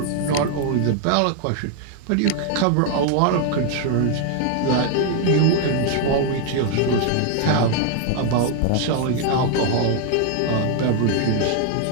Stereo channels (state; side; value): different; both; correlation 0.00